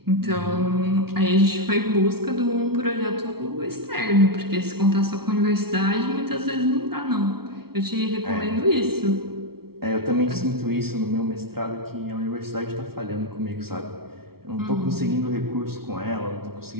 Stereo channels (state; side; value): late; left; 0.95 ms